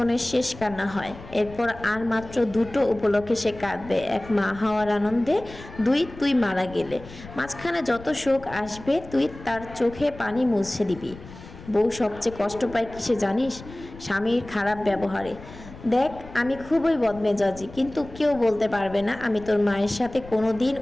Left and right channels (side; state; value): left; noise; rumble, 17 dB below the sound